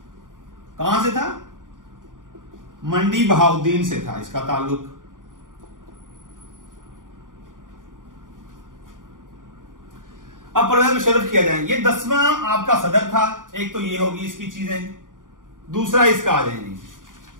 कहां से था? मंडी बहाउद्दीन से था इसका ताल्लुक। अब परवेज मुशर्रफ किया जाए। ये 10वां आपका सदर था। एक तो ये होगी इसकी चीजें, दूसरा इसका आ जाएंगे।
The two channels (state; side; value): late; left; 0.89 ms